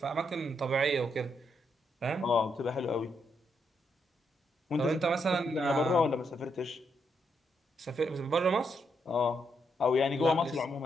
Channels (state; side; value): normal; both; correlation 0.79